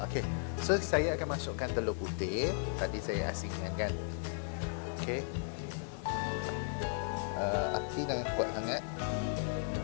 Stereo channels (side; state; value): right; silent; 54 dB below the other